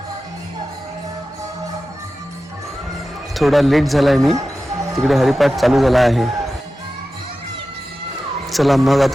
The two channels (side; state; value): both; normal; correlation 0.94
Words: थोडा लेट झाला आहे, मी तिकडे हरिपाठ चालू झाला आहे. चला मग